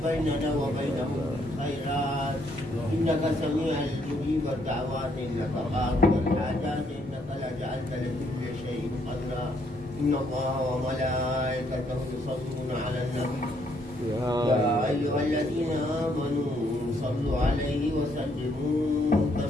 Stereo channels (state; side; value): normal; both; correlation 0.71